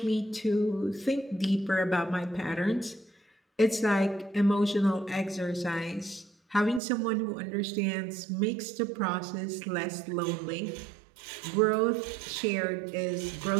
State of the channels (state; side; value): drops out; left; at 6.8 s